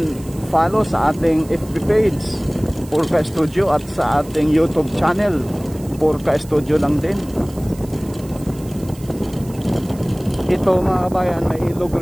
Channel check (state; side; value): noise; right; hiss, 21 dB below the sound